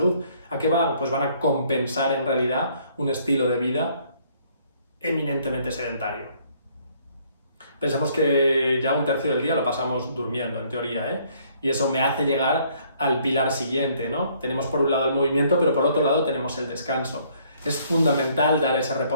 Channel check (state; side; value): inverted; both; correlation -0.63